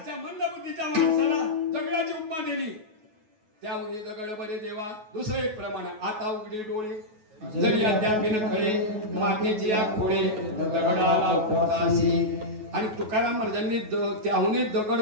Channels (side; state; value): left; late; 9.3 ms